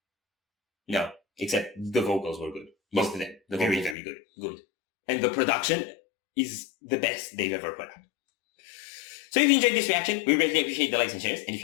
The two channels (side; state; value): right; drops out; at 4.0 s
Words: No, except the vocals were good. Most of them. Very, very good. Good. And the production is the best they've ever put out. So if you enjoyed this reaction, we greatly appreciate the likes and shares. And if